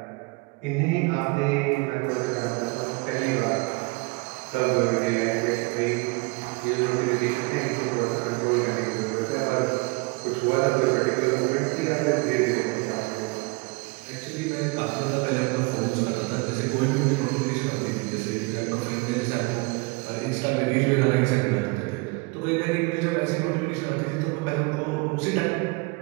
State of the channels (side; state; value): left; quieter; 27.1 dB